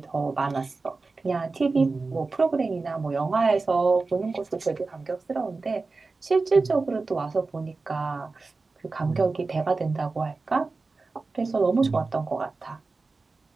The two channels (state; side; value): quieter; left; 3.8 dB